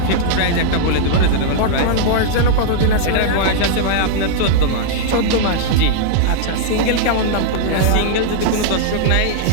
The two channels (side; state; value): both; different; correlation -0.01